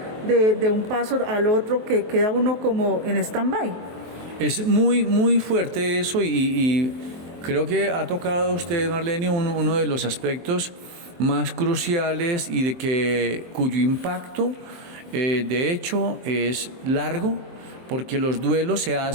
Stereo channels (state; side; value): late; left; 23 ms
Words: de un paso al otro, que queda uno como en stand-by? Es muy, muy fuerte eso, y creo que ha tocado usted, Marlene, uno de los aspectos más cruciales y cuyo impacto de hecho es largo, porque los duelos se